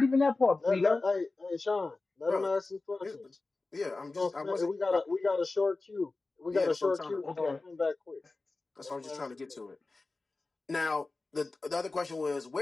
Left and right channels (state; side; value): quieter; right; 3.5 dB